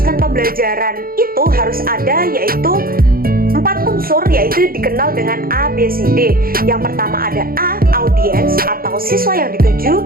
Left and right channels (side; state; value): left; late; 0.42 ms